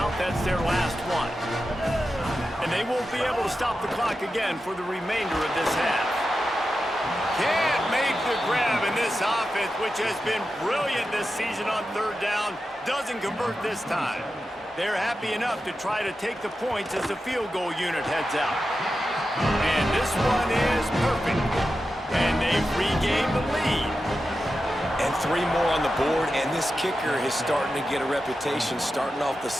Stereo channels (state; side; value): normal; both; correlation 0.91